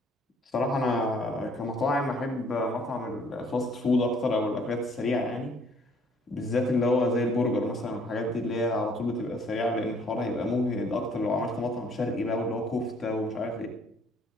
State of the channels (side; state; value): both; normal; correlation 0.61